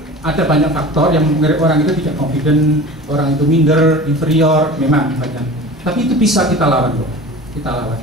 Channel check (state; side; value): normal; both; correlation 0.37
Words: Ada banyak faktor yang membuat orang itu tidak confident, orang itu minder, inferior, memang banyak. Tapi itu bisa kita lawan kok. Kita lawan.